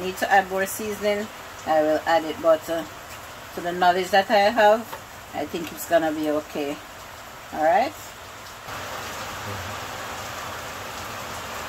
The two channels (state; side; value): identical; both; correlation 1.00